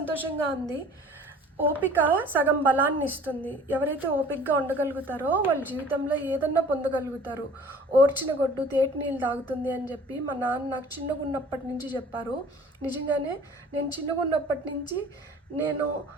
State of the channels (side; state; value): both; normal; correlation 0.48